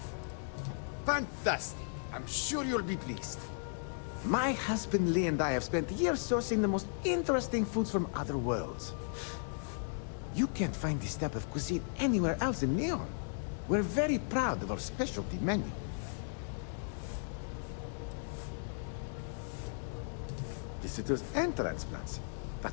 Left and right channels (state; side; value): silent; right; digital silence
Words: Fantastic. I'm sure you'll be pleased. My husband Lee and I have spent years sourcing the most interesting foods from other worlds. You can't find this type of cuisine anywhere else in Neon. We're very proud of our specialty menu. Visitors and transplants.